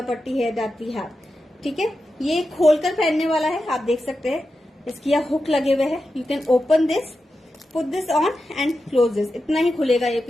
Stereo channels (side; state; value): both; normal; correlation 0.90